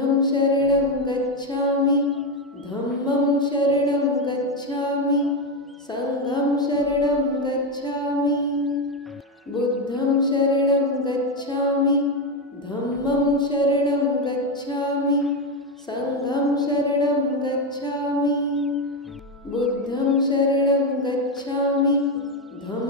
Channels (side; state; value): both; normal; correlation 0.10